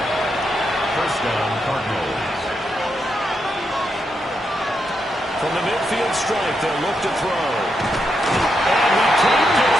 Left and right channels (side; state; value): both; normal; correlation 0.83